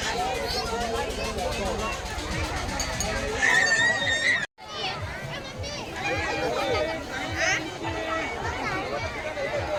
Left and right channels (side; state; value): both; identical; correlation 1.00